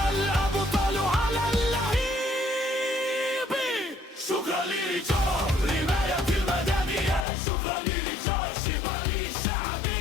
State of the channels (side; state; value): right; drops out; at 7.2 s